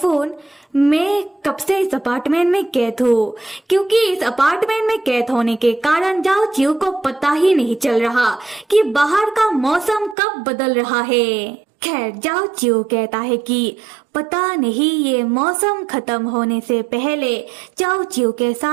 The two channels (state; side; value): drops out; left; at 10.2 s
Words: मैं कब से इस अपार्टमेंट में कैद हूँ, क्योंकि इस अपार्टमेंट में कैद होने के कारण जाओ चिऊ को पता ही नहीं चल रहा कि बाहर का मौसम कब बदल रहा है। खैर जाओ चिऊ कहता है कि पता नहीं ये मौसम खत्म होने से पहले जाओ चिऊ के